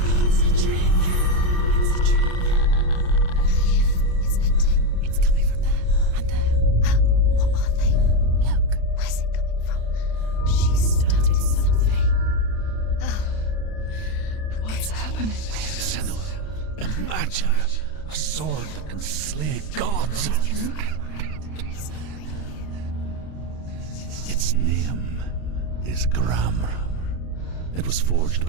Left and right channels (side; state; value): right; late; 32 ms